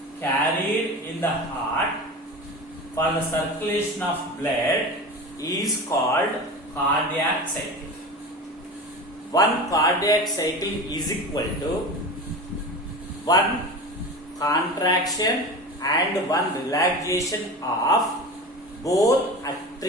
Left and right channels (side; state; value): both; normal; correlation 0.30